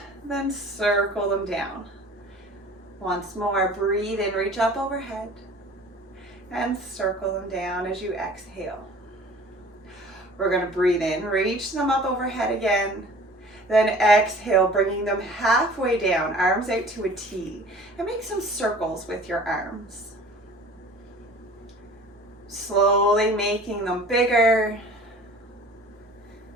then circle them down. Once more, breathe in, reach up overhead, and circle them down as you exhale. We're going to breathe in, reach them up overhead again. Then exhale, bringing them halfway down, arms out to a T. And make some circles with your arms. Slowly making them bigger.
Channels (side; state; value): both; normal; correlation 0.46